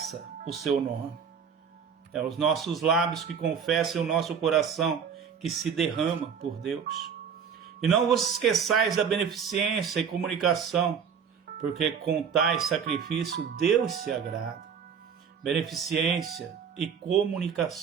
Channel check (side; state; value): left; quieter; 7.0 dB